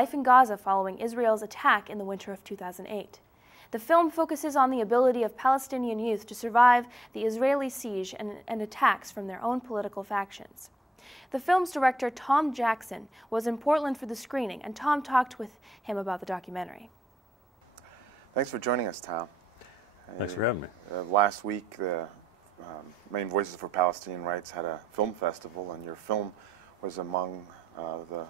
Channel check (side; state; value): both; normal; correlation 0.83